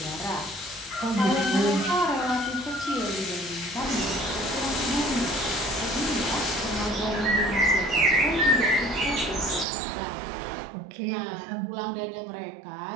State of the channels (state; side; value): drops out; left; at 9.7 s